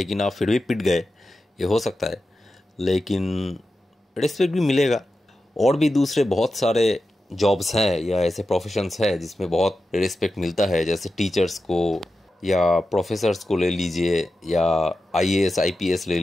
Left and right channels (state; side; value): normal; both; correlation 0.91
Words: आप फिर भी पिट गए, ये हो सकता है। लेकिन रिस्पेक्ट भी मिलेगा। और भी दूसरे बहुत सारे जॉब्स हैं या ऐसे प्रोफेशंस हैं जिसमें बहुत रिस्पेक्ट मिलता है, जैसे टीचर्स को या प्रोफेसर्स को ले लीजिए, या आईएएस आईपीएस ले